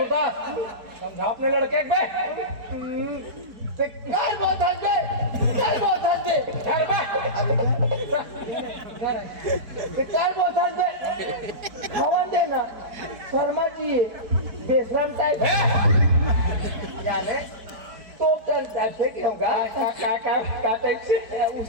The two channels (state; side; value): late; left; 4.6 ms